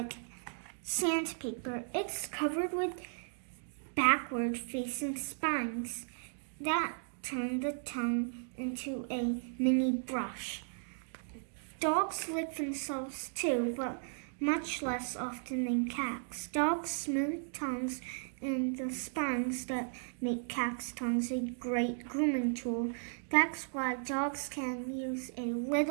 sandpaper. It's covered with backward-facing spines that turn the tongue into a mini brush. Dogs lick themselves too, but much less often than cats. Dogs' smooth tongues and the spines that make cats' tongues a great grooming tool. That's why dogs can use a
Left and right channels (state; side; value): silent; left; digital silence